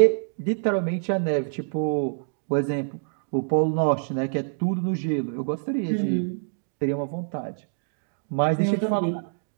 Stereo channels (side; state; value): left; silent; digital silence